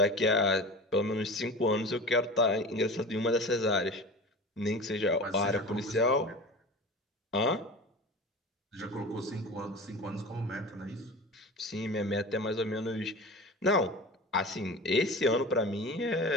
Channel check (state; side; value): normal; both; correlation 0.33